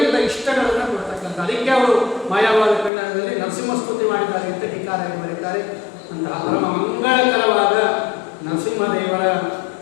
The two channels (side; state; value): right; drops out; at 2.9 s